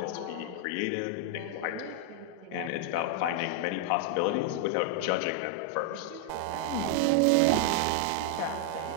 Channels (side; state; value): both; different; correlation -0.01